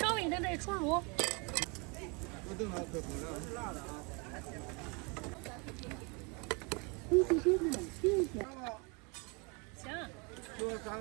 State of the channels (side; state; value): left; quieter; 31.1 dB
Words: 微等待出炉。我等它可不了，是辣的啊。行。就3